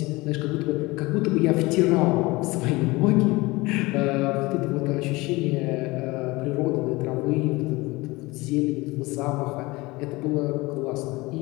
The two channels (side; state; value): right; quieter; 22.2 dB